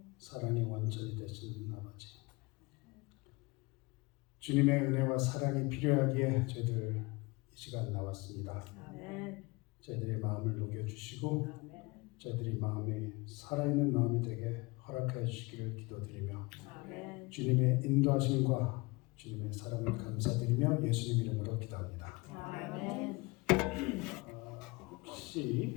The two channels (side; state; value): right; quieter; 24.7 dB